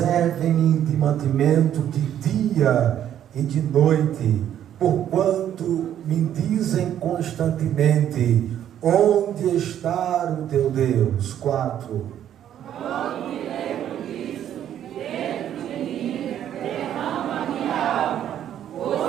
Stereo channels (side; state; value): left; quieter; 10.6 dB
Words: de mantimento de dia e de noite, porquanto me dizem constantemente: onde está o teu Deus? 4. Quando me lembro disso, dentro de mim derrama a minha alma,